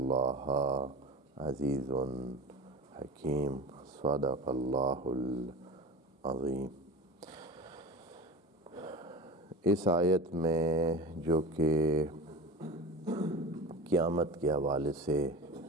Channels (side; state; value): both; normal; correlation 0.32